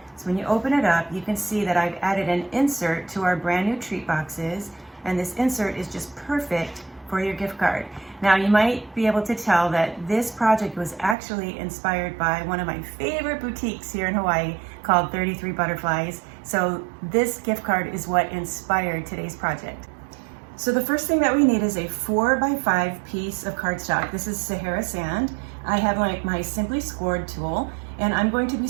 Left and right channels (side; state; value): left; drops out; at 11.2 s